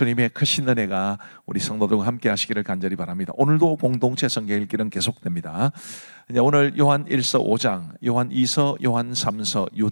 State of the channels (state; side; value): inverted; both; correlation -1.00